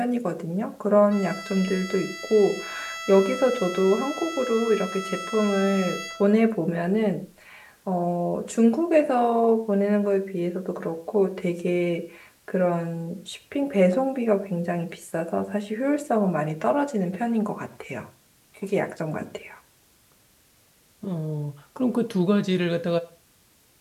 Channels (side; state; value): both; identical; correlation 1.00